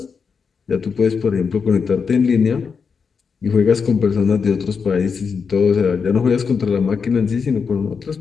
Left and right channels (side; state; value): right; quieter; 5.7 dB